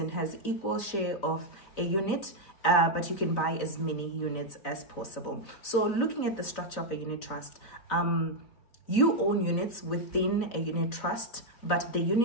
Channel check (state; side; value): late; right; 4.0 ms